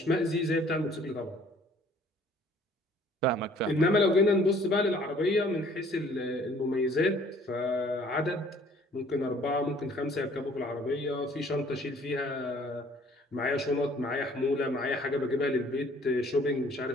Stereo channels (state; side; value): normal; both; correlation 0.56